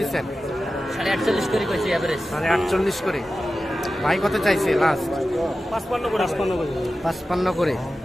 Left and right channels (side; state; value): both; normal; correlation 0.94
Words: 48 করে কইছি এভারেজ। 48 করে। ভাই কত চাইছে লাস্ট? 55 করে 55 করে।